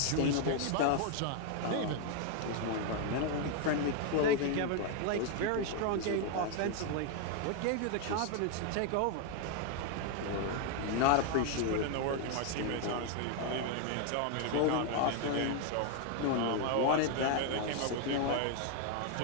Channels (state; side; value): different; both; correlation 0.01